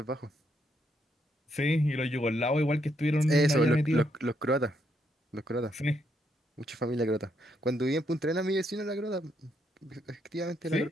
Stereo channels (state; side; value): normal; both; correlation 0.76